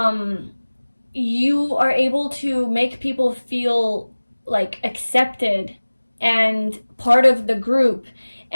you are able to make people feel like accepted and part of the group.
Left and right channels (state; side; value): inverted; both; correlation -1.00